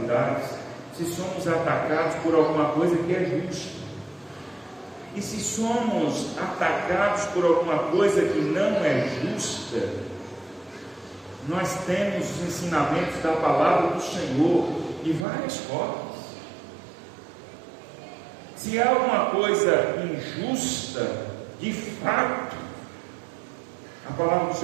se somos atacados por alguma coisa que é justa. E se somos atacados por alguma coisa que não é justa, nós temos os ensinamentos da palavra do Senhor de várias formas. Se há alguma coisa injusta, de fato, a palavra do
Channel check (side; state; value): left; drops out; at 15.2 s